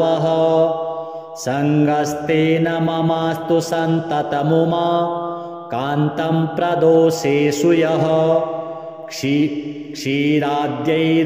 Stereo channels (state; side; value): identical; both; correlation 1.00